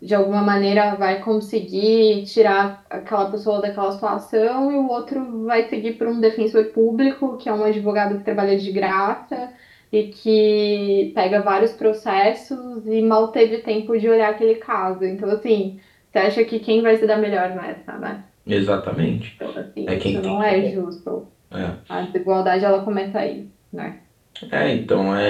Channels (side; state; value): both; identical; correlation 1.00